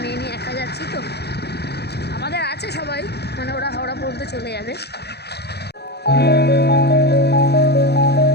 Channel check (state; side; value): late; right; 0.48 ms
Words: মেয়ে নিয়ে একা যাচ্ছি তো। আমাদের আছে সবাই, মানে ওরা হাওড়া পর্যন্ত চলে যাবে।